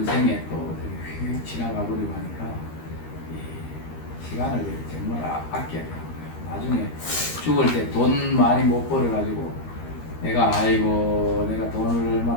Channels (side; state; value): right; late; 13 ms